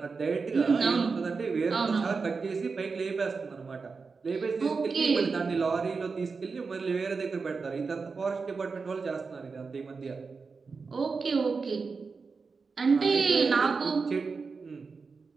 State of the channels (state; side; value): quieter; left; 4.7 dB